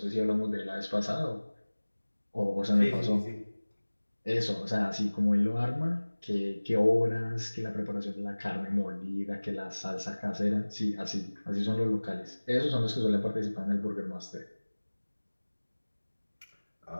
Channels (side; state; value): both; inverted; correlation -1.00